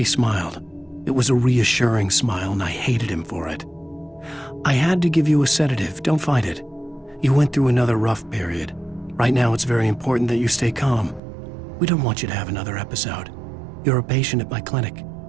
smiled. It was a reassuring smile, and I hated him for it. I had to give you a sedative. Don't fight it. You went through another rough period. Right now, it's very important that you stay calm. We don't want you to have another episode. You're a patient at my clinic.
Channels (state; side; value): drops out; left; at 11.2 s